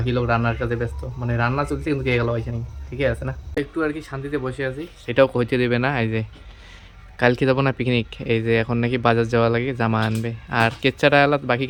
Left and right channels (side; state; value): both; identical; correlation 1.00